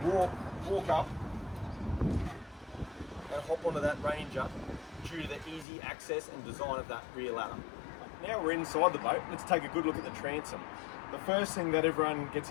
walk up and hop onto that Ranger due to the easy access and design of that rear ladder. Now we're inside the boat, let's take a good look at the transom. The first thing that everyone gets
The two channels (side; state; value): right; drops out; at 5.7 s